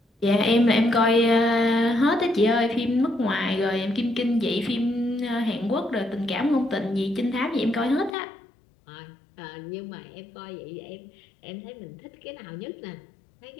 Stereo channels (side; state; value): right; drops out; at 8.2 s